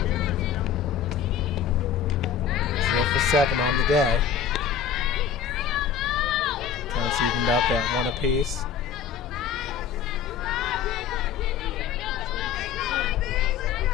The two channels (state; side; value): quieter; right; 7.8 dB